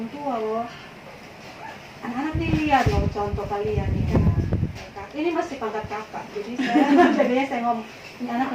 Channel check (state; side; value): identical; both; correlation 1.00